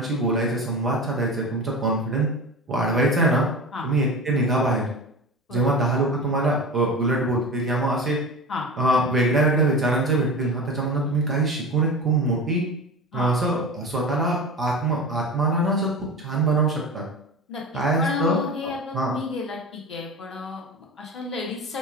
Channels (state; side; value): normal; both; correlation 0.30